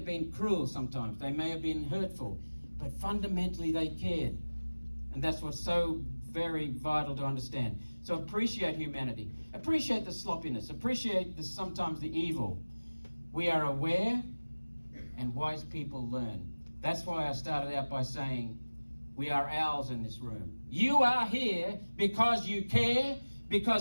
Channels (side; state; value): both; inverted; correlation -1.00